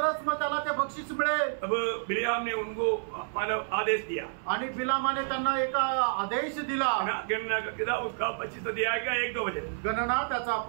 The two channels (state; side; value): silent; left; 57 dB below the other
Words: मग त्याला ते बक्षीस मिळेल. तब बिलियाम ने उनको मतलब आदेश दिया. आणि बिलामाने त्यांना एक आदेश दिला. गणना का किताब उसका 25 अध्याय का 1-2 वचन. गणना त्याचा